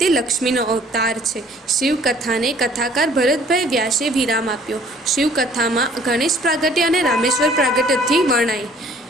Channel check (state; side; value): normal; both; correlation 0.55